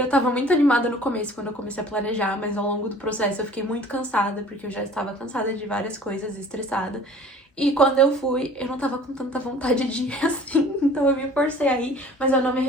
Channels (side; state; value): both; normal; correlation 0.48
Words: tava muito animada no começo quando eu comecei a planejar, mas ao longo do processo eu fiquei muito cansada, porque eu já estava cansada de várias coisas e estressada. E quando eu fui, eu não tava com tanta vontade de ir assim, então eu me forcei a ir, mas eu não me